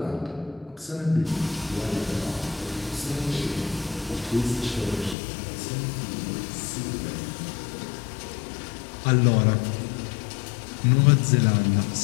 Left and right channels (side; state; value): right; drops out; at 5.2 s